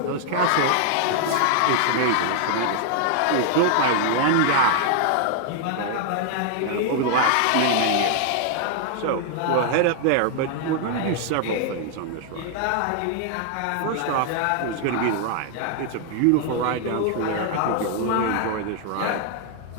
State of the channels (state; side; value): different; both; correlation 0.00